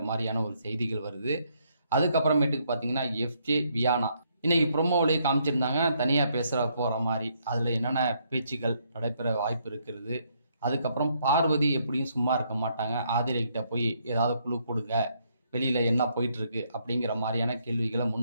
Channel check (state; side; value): inverted; both; correlation -0.73